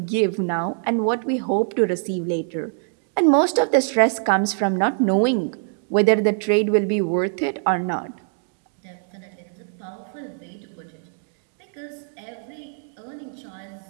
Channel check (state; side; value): silent; left; 58 dB below the other